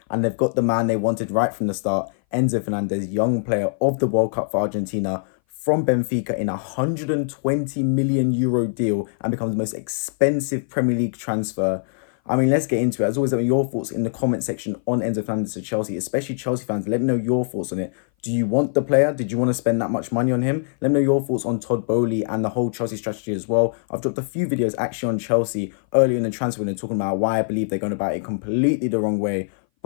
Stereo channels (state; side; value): silent; right; 59 dB below the other